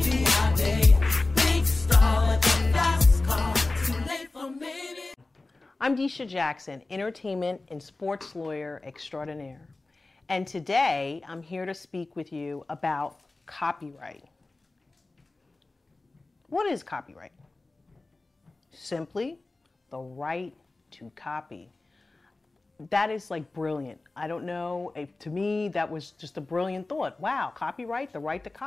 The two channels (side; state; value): right; quieter; 3.2 dB